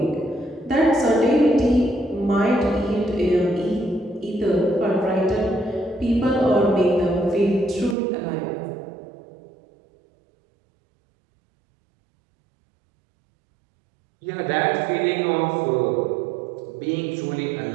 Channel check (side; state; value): left; drops out; at 8.0 s